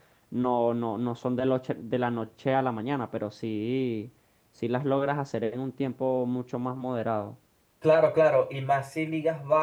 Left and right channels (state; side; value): identical; both; correlation 1.00